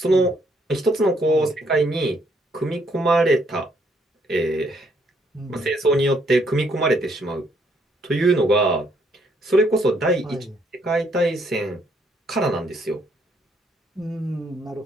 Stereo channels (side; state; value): both; normal; correlation 0.70